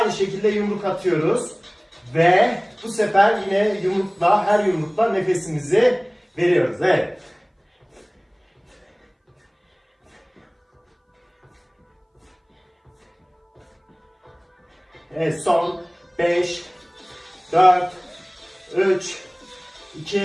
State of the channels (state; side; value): identical; both; correlation 1.00